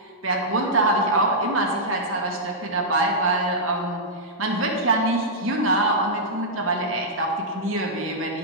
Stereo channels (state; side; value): normal; both; correlation -0.10